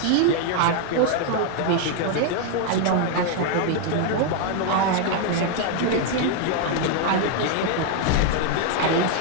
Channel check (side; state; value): both; different; correlation 0.00